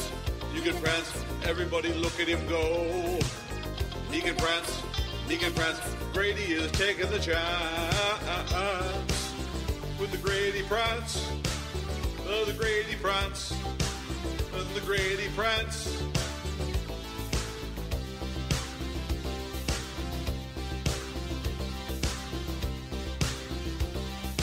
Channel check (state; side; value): identical; both; correlation 1.00